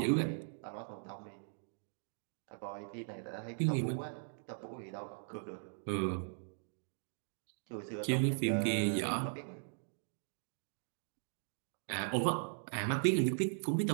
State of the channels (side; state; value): left; silent; digital silence